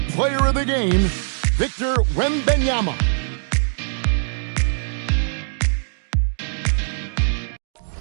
player of the game, Victor Wembanyama.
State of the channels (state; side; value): silent; left; digital silence